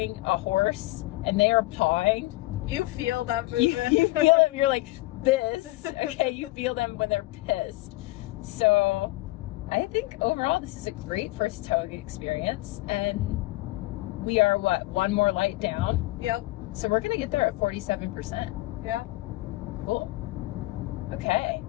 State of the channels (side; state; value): right; quieter; 19.9 dB